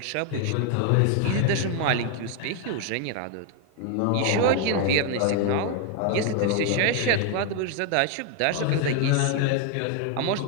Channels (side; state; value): both; different; correlation 0.01